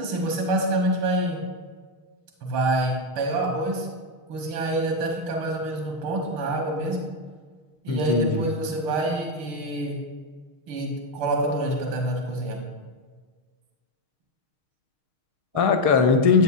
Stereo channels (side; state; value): left; late; 6.4 ms